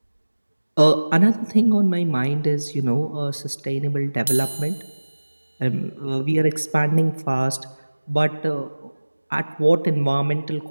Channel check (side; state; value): both; inverted; correlation -1.00